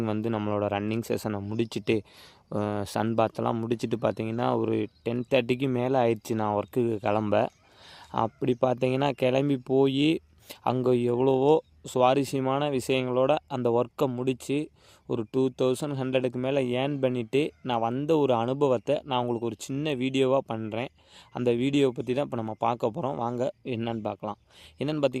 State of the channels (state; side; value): identical; both; correlation 1.00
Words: நம்மளோட ரன்னிங் செஷனை முடிச்சுட்டு சன் பாத்தெல்லாம் முடிச்சுட்டு பார்த்தீங்கன்னா ஒரு 10:30க்கு மேலே ஆயிடுச்சு நான் ஒர்க்குக்கு கிளம்ப. அப்படி பார்த்தீங்கன்னா கிளம்பி போய் அங்கே எவ்வளவோ சுவாரஸ்யமான விஷயங்களோட அந்த ஒர்க்கை முடித்து ஒரு 2100க்கு மேலே ஏர்ன் பண்ணிவிட்டு நான் வந்த ஒரு அனுபவத்தை நான் உங்களுக்கு ஒரு சின்ன வீடியோவாக பண்ணுறேன். அந்த வீடியோவை பற்றி தான் இப்போ நம்ம பார்க்க போகிறோம். வாங்க என்னென்னு பார்க்கலாம். என்னென்னு